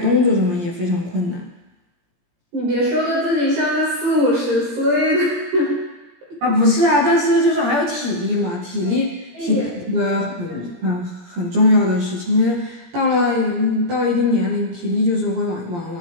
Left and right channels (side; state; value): left; late; 17 ms